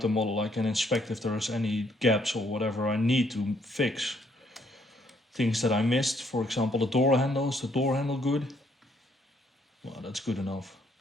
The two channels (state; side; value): normal; both; correlation 0.69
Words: model, I can inspect if there's any gaps or whatever I need to fix. Things that I missed, for example, the door handle. Is the door handle good? Well, that's good enough.